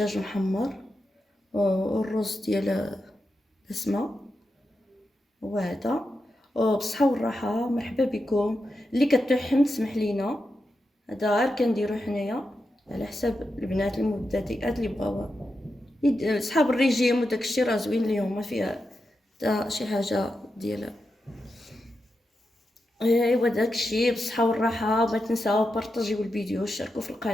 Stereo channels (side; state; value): both; normal; correlation 0.88